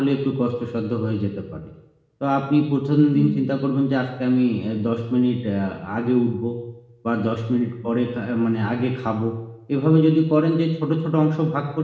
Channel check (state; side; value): identical; both; correlation 1.00